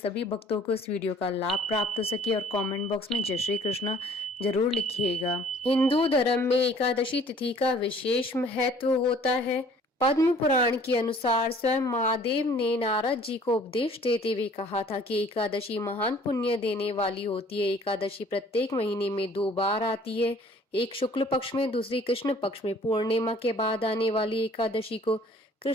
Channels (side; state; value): both; normal; correlation 0.54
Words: भक्तों को इस वीडियो का लाभ प्राप्त हो सके। और कमेंट बॉक्स में जय श्री कृष्ण जरूर लिखिएगा। हिंदू धर्म में एकादशी तिथि का विशेष महत्व होता है। पद्म पुराण के अनुसार स्वयं महादेव ने नारद जी को उपदेश देते हुए कहा था कि एकादशी महान पुण्य देने वाली होती है। एकादशी प्रत्येक महीने में 2 बार आती है, एक शुक्ल पक्ष में, दूसरी कृष्ण पक्ष में। पूर्णिमा के बाद आने वाली एकादशी को